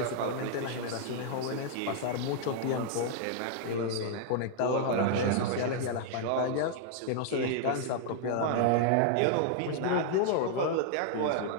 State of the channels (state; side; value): different; both; correlation -0.01